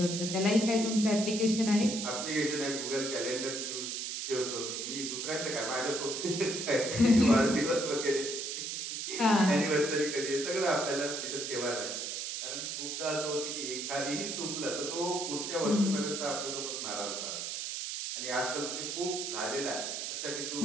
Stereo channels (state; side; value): noise; right; hiss, 4 dB below the sound